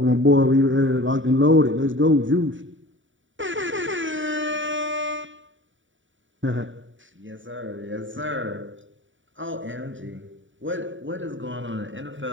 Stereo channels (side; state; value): left; late; 0.56 ms